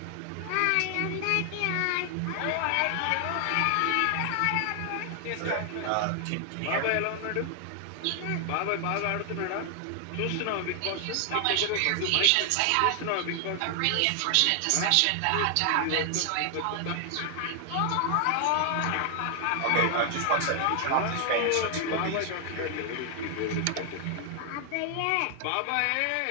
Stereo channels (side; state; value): both; different; correlation 0.00